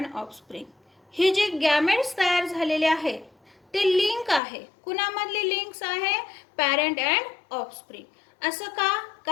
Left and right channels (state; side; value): drops out; right; at 4.4 s